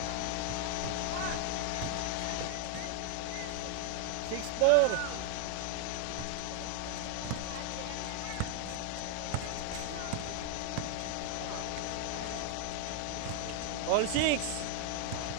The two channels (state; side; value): different; both; correlation 0.00